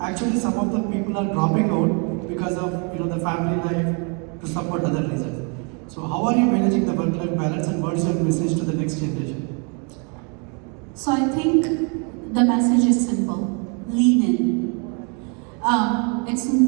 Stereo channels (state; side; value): quieter; left; 36.0 dB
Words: actually some of the people are dropping out because of the family life to support other reasons. So how are you managing the work-life balance, and what is your message to the next generation? So I think the message is simple: lean in.